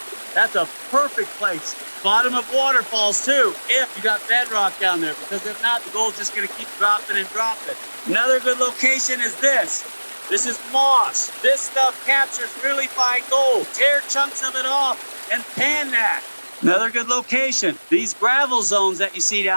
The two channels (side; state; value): both; inverted; correlation -1.00